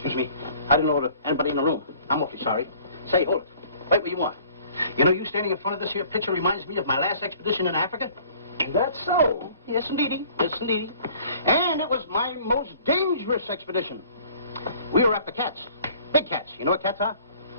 me. I didn't know anybody in the room. I'm awfully sorry. Say, hold it. Right where you are. You know, you standing in front of this here picture reminds me of my last expedition in Africa. That's so. Yes, indeedy. Yes, indeedy. And it was my most dangerous expedition. We were after cats. Big cats. You know what cats are?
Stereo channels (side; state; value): both; inverted; correlation -0.53